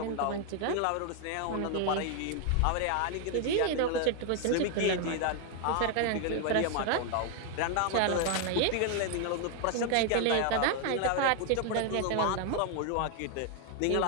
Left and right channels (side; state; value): both; different; correlation 0.00